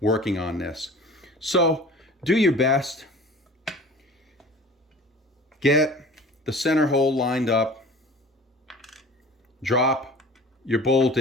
on this. So do your best. Get the center hole lined up. Drop your bolt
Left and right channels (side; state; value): both; normal; correlation 0.43